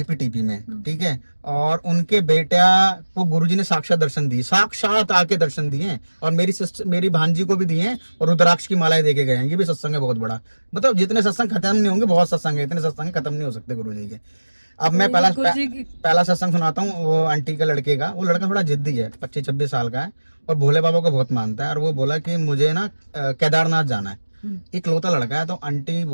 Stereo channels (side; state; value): both; inverted; correlation -1.00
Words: में, ठीक है। और उनके बेटा को गुरुजी ने साक्षात दर्शन दिए, साक्षात आके दर्शन दिए, और मेरी भांजी को भी दिए हैं, और रुद्राक्ष की मालाएं देके गए हैं। ये भी सत्संग है बहुत बड़ा, मतलब जितने सत्संग खत्म नहीं होंगे, बहुत सत्संग है, इतने सत्संग खत्म नहीं हो सकते गुरुजी के। अब मैं पहला सत्संग सुनाता हूँ वो आंटी के लड़के का। वो लड़का थोड़ा जिद्दी है, 25-26 साल का है, और भोले बाबा को बहुत मानता है। और वो बोला कि मुझे ना केदारनाथ जाना है, इकलौता लड़का है। तो आंटी